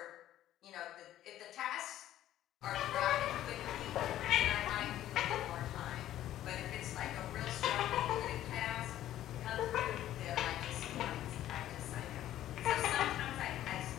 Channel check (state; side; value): quieter; right; 12.8 dB